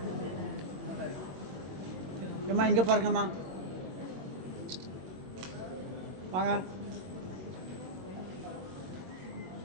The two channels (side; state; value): left; late; 22 ms